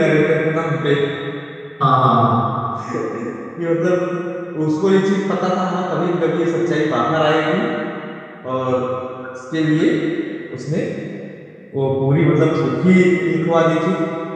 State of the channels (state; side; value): identical; both; correlation 1.00